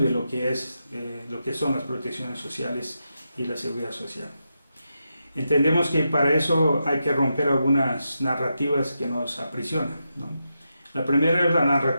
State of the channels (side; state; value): both; inverted; correlation -0.87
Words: de lo que son las protecciones sociales y la seguridad social. Entendemos que para eso hay que romper algunas narrativas que nos aprisionan, ¿no? La primera es la